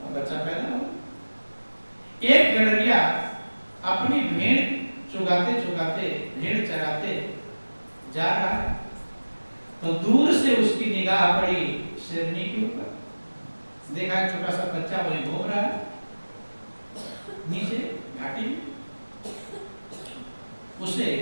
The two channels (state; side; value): inverted; both; correlation -1.00